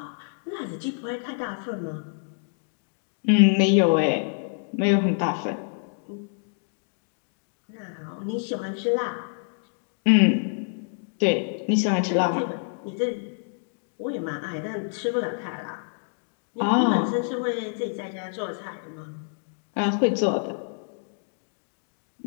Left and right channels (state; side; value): silent; right; digital silence